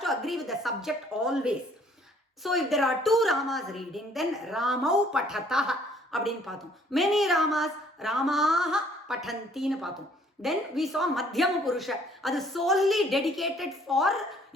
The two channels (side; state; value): both; normal; correlation 0.60